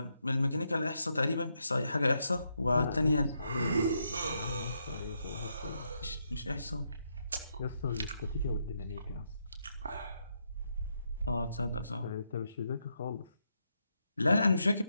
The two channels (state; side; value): inverted; both; correlation -0.80